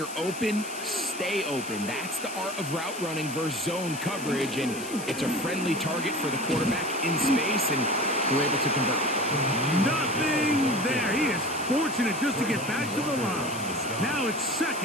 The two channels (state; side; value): noise; left; hiss, 12 dB below the sound